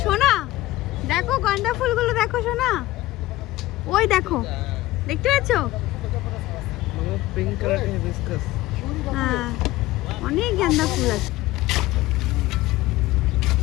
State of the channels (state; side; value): quieter; right; 17.1 dB